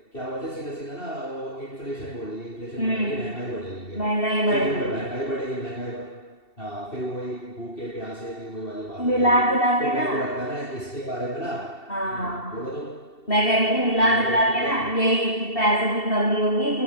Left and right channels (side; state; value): right; late; 2.7 ms